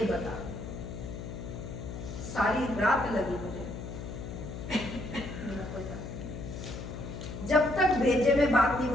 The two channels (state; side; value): noise; left; hum, 8 dB below the sound